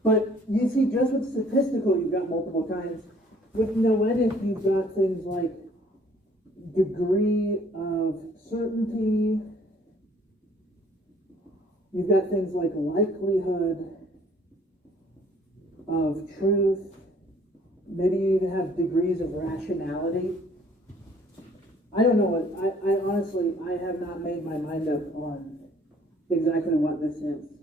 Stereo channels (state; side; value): normal; both; correlation 0.59